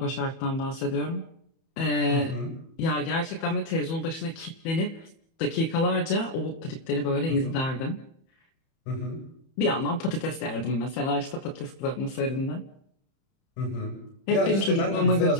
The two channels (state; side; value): late; right; 31 ms